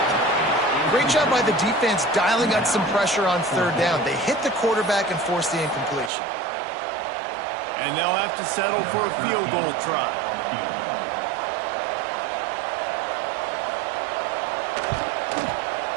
Great job by the defense dialing up some pressure on third down. They hit the quarterback and forced the incompletion. And they'll have to settle for a field goal try.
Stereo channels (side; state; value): left; drops out; at 6.1 s